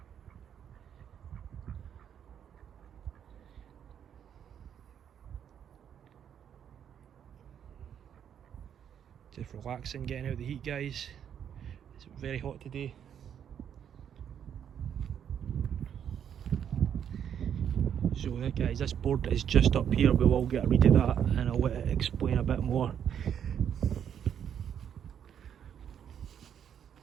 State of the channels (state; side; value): quieter; left; 8.8 dB